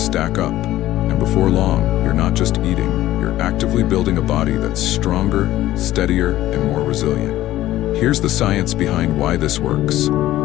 stack up, and before long, you're not just eating, you're actively building a body that's stronger, steadier, and more resilient. Here's the science behind why this works.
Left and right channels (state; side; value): quieter; right; 14.7 dB